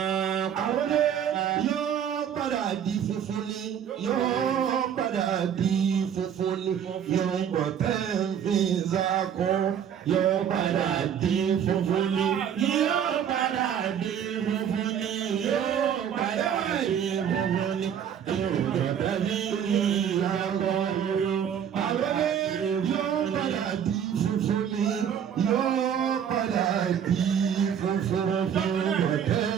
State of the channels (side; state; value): left; quieter; 8.7 dB